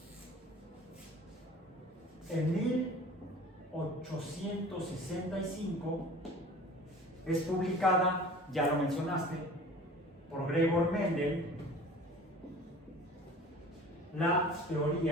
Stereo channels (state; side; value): normal; both; correlation 0.44